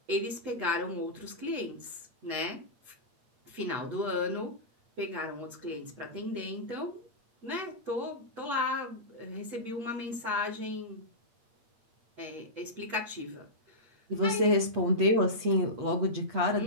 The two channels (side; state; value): left; late; 8.6 ms